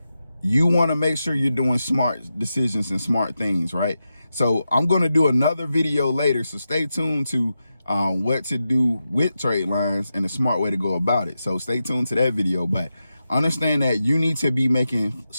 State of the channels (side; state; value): both; inverted; correlation -0.89